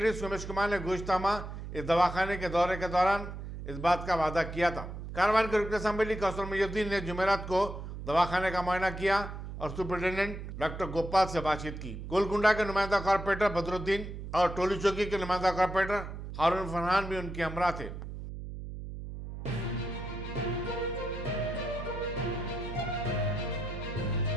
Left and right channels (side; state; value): right; noise; hum, 9 dB below the sound